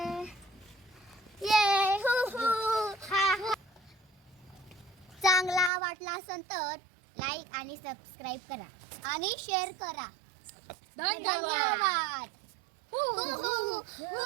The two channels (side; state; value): left; drops out; at 5.7 s